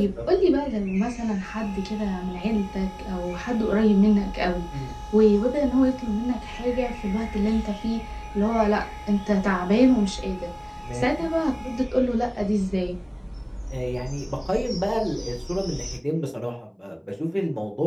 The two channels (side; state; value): both; identical; correlation 1.00